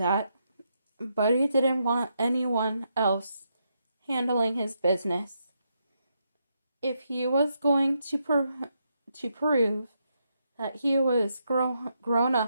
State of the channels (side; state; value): both; inverted; correlation -0.80